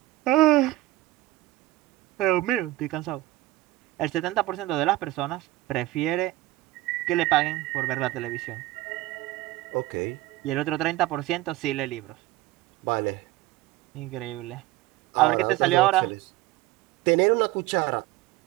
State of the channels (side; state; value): left; quieter; 17.4 dB